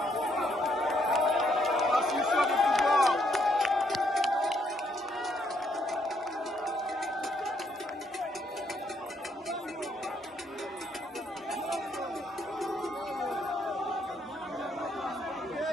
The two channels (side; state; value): both; normal; correlation 0.72